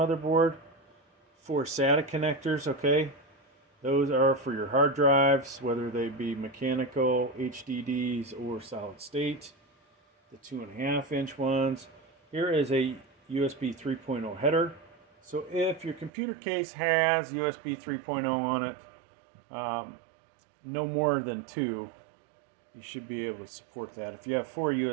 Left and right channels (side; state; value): left; drops out; at 16.1 s